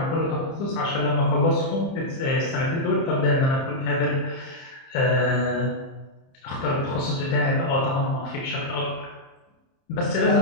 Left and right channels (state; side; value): late; right; 30 ms